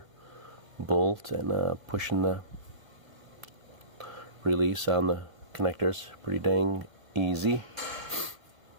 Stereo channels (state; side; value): late; left; 1.9 ms